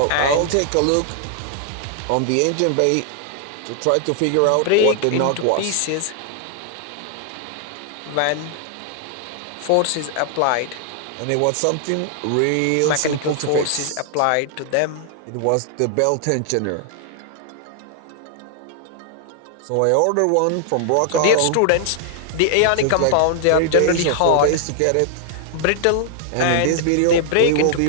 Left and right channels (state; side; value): different; both; correlation -0.01